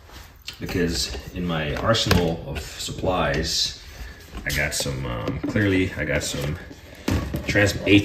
because in my arsenal of supplies, I got some, clearly I got some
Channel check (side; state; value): both; identical; correlation 1.00